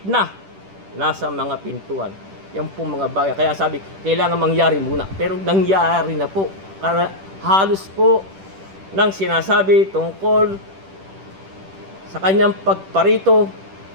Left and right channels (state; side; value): late; left; 10 ms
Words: na nasa mga pintuan. Yan po mga bagay. Kaya sabi, kailangan mangyari muna. Pero nangyari na po. Halos po nang sinasabi tungkol sa kanyang pagparito